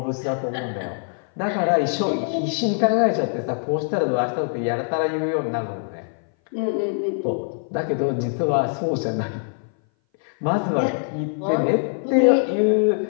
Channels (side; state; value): right; silent; 59 dB below the other